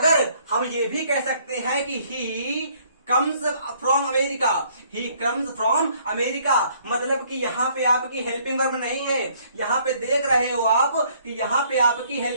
हम ये भी कह सकते हैं कि he comes from America, he comes from America, मतलब कि यहां पे आपकी हेल्पिंग वर्ब नहीं है। यहां पे देख रहे हो आप कि यहां पे आपकी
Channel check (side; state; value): both; inverted; correlation -0.63